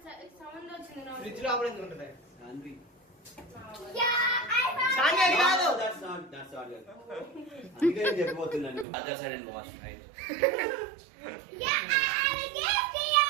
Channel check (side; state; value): left; drops out; at 8.8 s